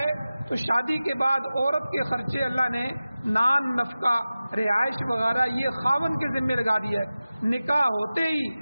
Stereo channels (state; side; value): inverted; both; correlation -0.95